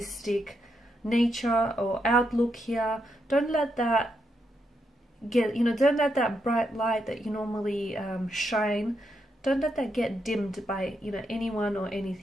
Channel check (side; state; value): both; normal; correlation 0.81